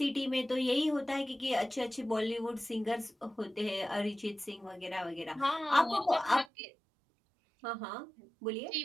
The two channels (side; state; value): left; drops out; at 6.5 s